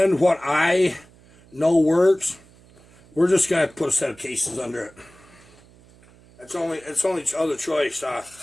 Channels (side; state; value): right; noise; hum, 27 dB below the sound